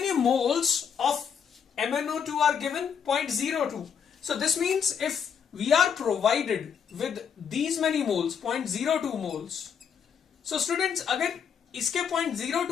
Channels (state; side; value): quieter; right; 7.3 dB